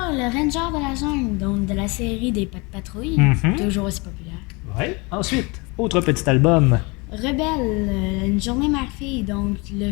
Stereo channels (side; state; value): right; quieter; 27.5 dB